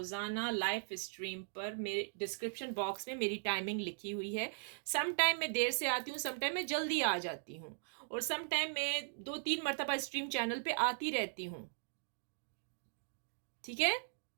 लाइव स्ट्रीम पर, मेरे डिस्क्रिप्शन बॉक्स में मेरी टाइमिंग लिखी हुई है। सम टाइम मैं देर से आती हूँ, सम टाइम मैं जल्दी आ जाती हूँ, और सम टाइम मैं 2-3 मरतबा स्ट्रीम चैनल पे आती रहती हूँ। ठीक है,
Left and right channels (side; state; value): left; silent; digital silence